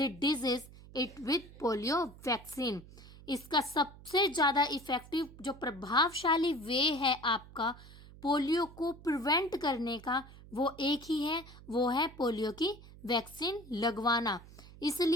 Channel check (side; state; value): right; noise; hum, 19 dB below the sound